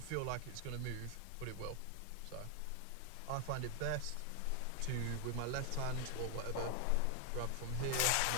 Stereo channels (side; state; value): both; different; correlation 0.00